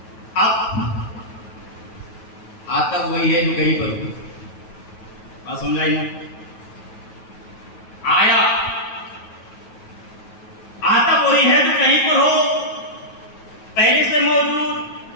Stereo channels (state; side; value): late; right; 9.2 ms